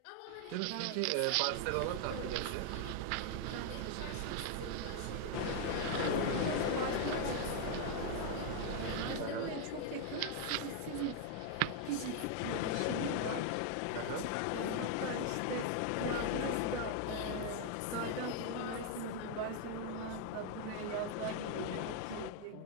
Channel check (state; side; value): different; both; correlation 0.00